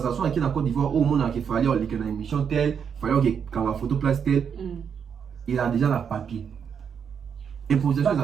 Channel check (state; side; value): quieter; left; 7.3 dB